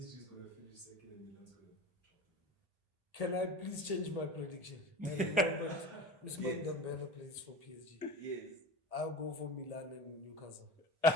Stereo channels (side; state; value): both; normal; correlation 0.32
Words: is gonna finish second and Milan's going to top. Can I please change my prediction? I remember Usman Yes. Dembele plays for PSG. Yes. I'll go for Milan and Newcastle.